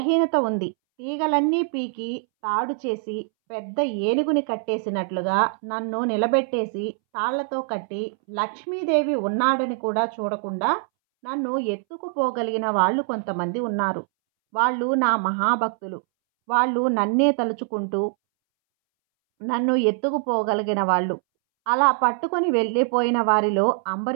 ఉంది. తీగలన్నీ పీకి తాడు చేసి పెద్ద ఏనుగుని కట్టేసినట్లుగా నన్ను నిలబెట్టేసి తాళ్లతో కట్టి లక్ష్మీదేవి ఉన్నాడని కూడా చూడకుండా నన్ను ఎత్తుకుపోగలిగిన వాళ్ళు కొంతమంది ఉన్నారు. వాళ్ళు నా మహాభక్తులు. వాళ్ళు నన్నే తలుచుకుంటూ నన్ను ఎత్తుకుపోగలిగిన వాళ్ళు. అలా పట్టుకొని వెళ్ళిపోయిన వారిలో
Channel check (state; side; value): silent; left; 63 dB below the other